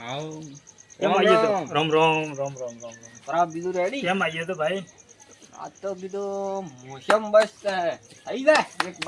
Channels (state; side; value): identical; both; correlation 1.00